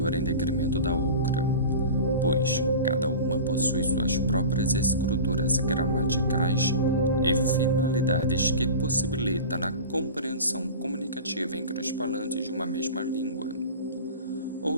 em detrimento da outra, pois cada uma possui suas próprias estruturas gramaticais e finalidades que possibilitam a compreensão comunicativa entre os falantes de uma mesma língua.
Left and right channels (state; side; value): inverted; both; correlation -0.34